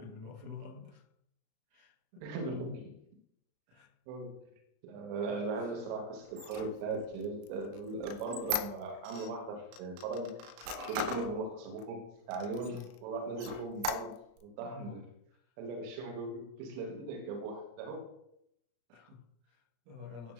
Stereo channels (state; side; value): late; left; 34 ms